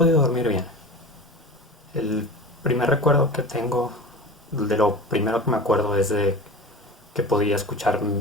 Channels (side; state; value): both; normal; correlation 0.33